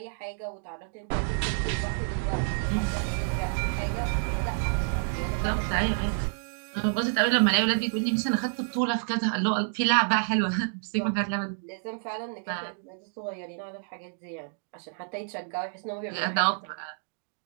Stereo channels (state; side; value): silent; left; digital silence